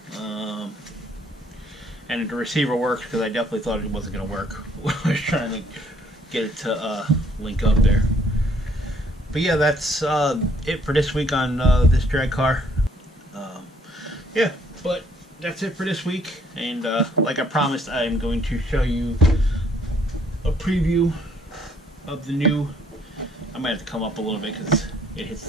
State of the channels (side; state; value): both; normal; correlation 0.65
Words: And the receiver works because I definitely thought it wasn't going to work when I was trying to get it to link up there. But yeah, that's it for this week on this drag car. Yeah, but that's it for this week. And like I promised, I'm going to show you a preview of the new. I might have to come up a little bit because it hits